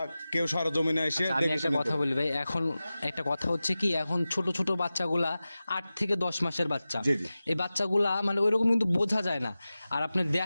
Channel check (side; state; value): both; inverted; correlation -0.96